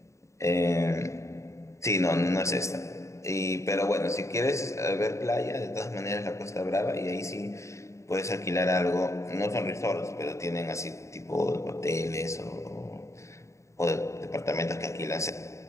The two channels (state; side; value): late; right; 0.14 ms